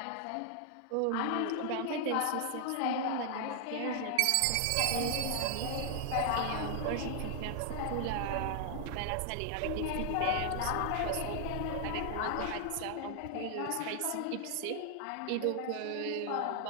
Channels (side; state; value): both; different; correlation 0.00